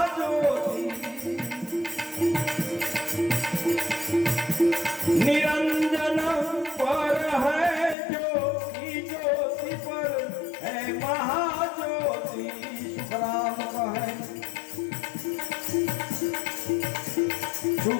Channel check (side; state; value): right; drops out; at 8.0 s